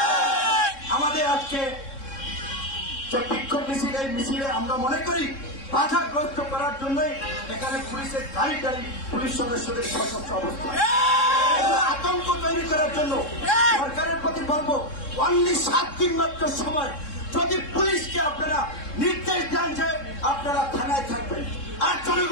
আমাদের আজকে বিক্ষোভ মিছিল, এই মিছিলে আমরা মনে করি বাধাগ্রস্ত করার জন্যই এখানে পুলিশের গাড়ি গাড়ি পুলিশ সদস্যদের সশস্ত্র অবস্থা, আতঙ্ক তৈরি করার জন্য সরকারের প্রতি বলবো, অনলি 7 দিন মাত্র সময়, যদি পুলিশকে আপনারা নির্দেশ দেন যে আপনারা থানায় থাকবেন, আর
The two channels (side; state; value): right; late; 3.7 ms